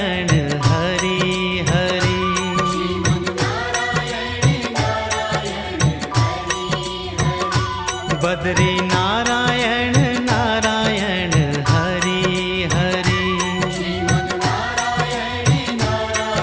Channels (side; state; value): both; identical; correlation 1.00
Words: हरि हरि बद्री नारायण नारायण हरि हरि